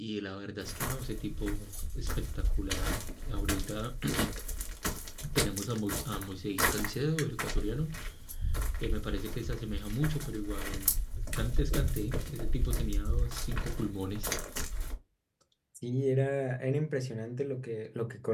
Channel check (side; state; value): both; identical; correlation 1.00